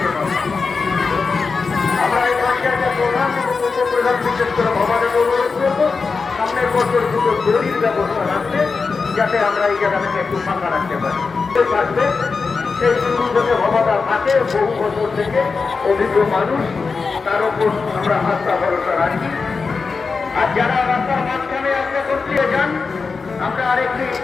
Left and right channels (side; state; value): right; quieter; 4.7 dB